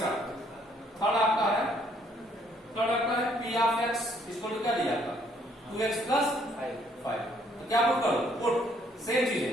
थर्ड आपका है पी ऑफ एक्स इसको क्या दिया आपका? 2x plus 5। तो क्या पुट करो? पुट सेम चीज है,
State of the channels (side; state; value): both; normal; correlation 0.66